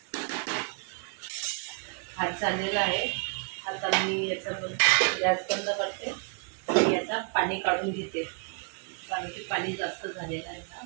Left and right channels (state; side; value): quieter; left; 38.2 dB